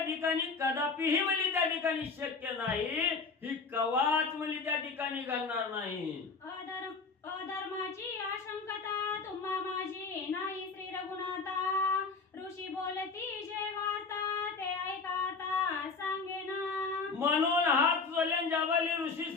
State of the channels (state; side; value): quieter; right; 4.6 dB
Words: ठिकाणी कदापिही म्हणजे त्या ठिकाणी शक्य नाही. ही कवाच म्हणजे त्या ठिकाणी घडणार नाही. अधर्माची आशंकता तुम्हा माझी नाही श्री रघुनाथा. ऋषी बोलती जे वार्ता ते ऐकाता सांगेना. म्हणून हात जोडून जाबाली ऋषी